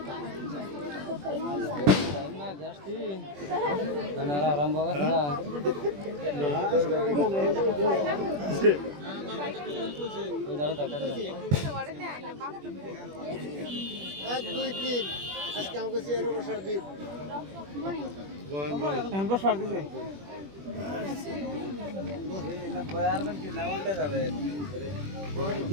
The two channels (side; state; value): left; late; 21 ms